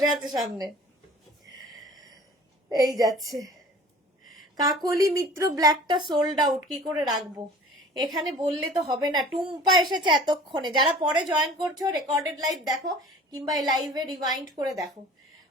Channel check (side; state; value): both; normal; correlation 0.46